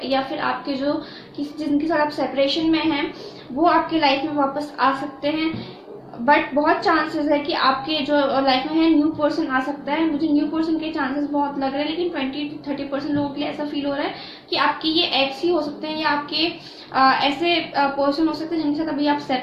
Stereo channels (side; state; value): both; identical; correlation 1.00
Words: या फिर आपके जो जिनके साथ आप सेपरेशन में हैं वो आपके लाइफ में वापस आ सकते हैं। बट बहुत चांसेस है कि आपके जो लाइफ में है न्यू पर्सन आ सकता है। मुझे न्यू पर्सन के चांसेस बहुत लग रहे हैं, लेकिन 20-30% लोगों के लिए ऐसा फील हो रहा है कि आपके ये एक्स ही हो सकते हैं, या आपके ऐसे पर्सन हो सकते हैं जिनके साथ अभी आप